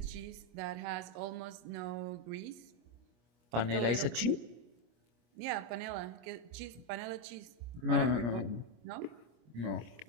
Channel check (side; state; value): left; late; 25 ms